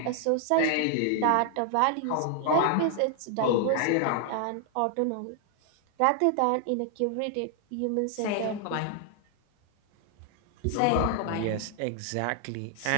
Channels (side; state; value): both; different; correlation 0.00